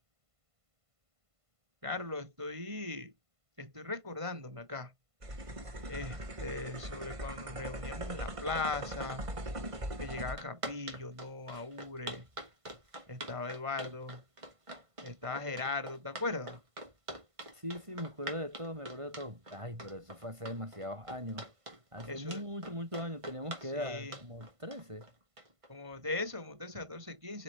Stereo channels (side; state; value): left; late; 1.5 ms